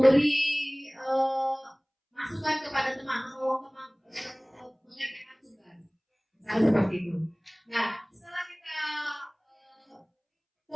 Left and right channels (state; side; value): identical; both; correlation 1.00